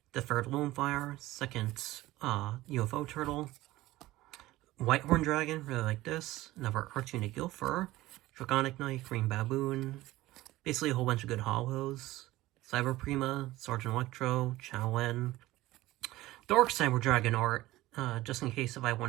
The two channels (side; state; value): left; quieter; 17.4 dB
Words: The third Lonefire, second UFO Turtle. Whitehorn Dragon, really like this. Another Archfiend Gilfer. Draconic Knight, Green Baboon. Basically a whole bunch of good hollows. Cyber Prima, Sergeant Electro, Chowlen. Dark Cyber Dragon art, just in case if I